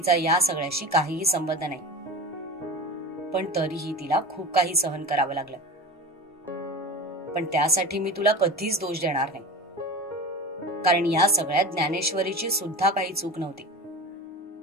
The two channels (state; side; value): normal; both; correlation 0.30